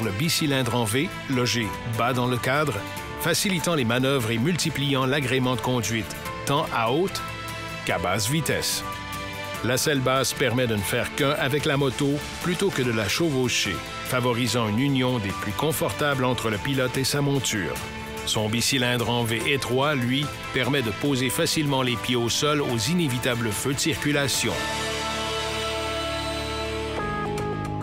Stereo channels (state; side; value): identical; both; correlation 1.00